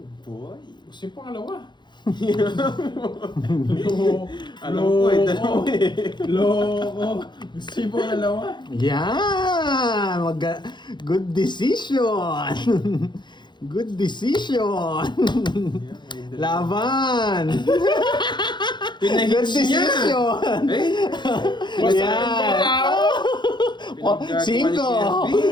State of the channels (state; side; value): late; right; 0.22 ms